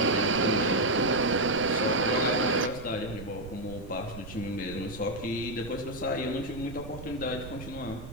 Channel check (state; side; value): noise; right; rumble, 13 dB below the sound